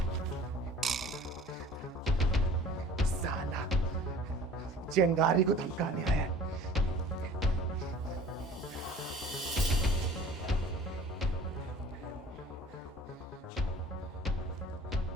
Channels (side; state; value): both; normal; correlation 0.47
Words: साला चिंगारी को धमकाने आया है।